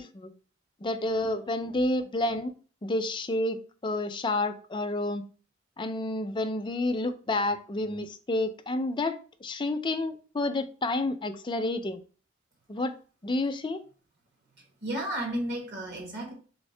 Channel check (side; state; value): both; normal; correlation 0.47